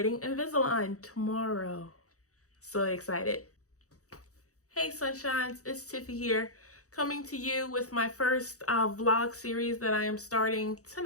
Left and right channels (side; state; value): right; late; 0.65 ms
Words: Invisalign tomorrow. So excited. Hey sunshines, it's Tiffy here, coming to you with my first vlog series that I am starting